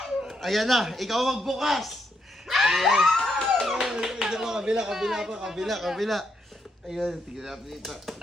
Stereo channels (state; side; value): normal; both; correlation 0.79